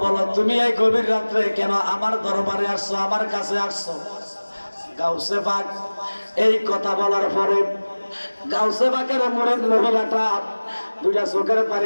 বলো তুমি এই গভীর রাত্রে কেন আমার দরবারে আসছো আমার কাছে আসছো গাউসে পাক এই কথা বলার পরে গাউসে পাকের মুরিদ মহিলাটা দুইটা চোখের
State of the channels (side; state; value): both; inverted; correlation -1.00